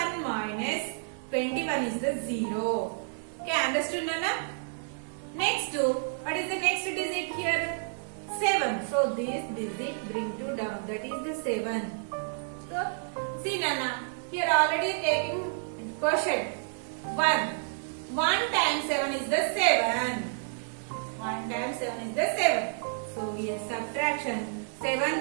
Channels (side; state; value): left; silent; digital silence